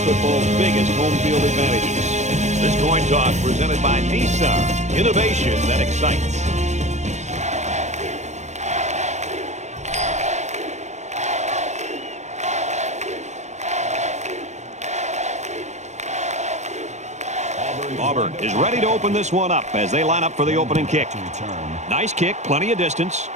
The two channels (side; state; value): left; late; 0.33 ms